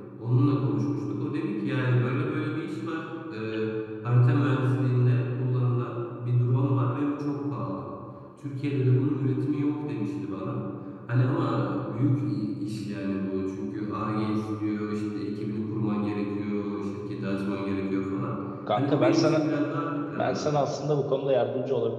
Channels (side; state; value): both; identical; correlation 1.00